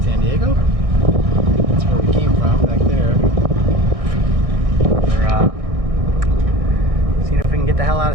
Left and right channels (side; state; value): left; late; 1.6 ms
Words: Diego. That's where we came from, back there. We're seeing if we can get the hell out